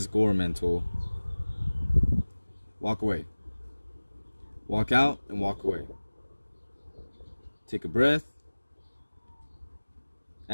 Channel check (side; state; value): both; inverted; correlation -1.00